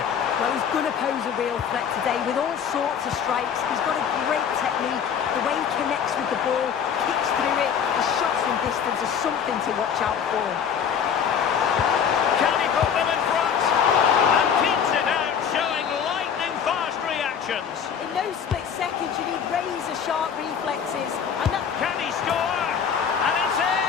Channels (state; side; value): quieter; right; 7.6 dB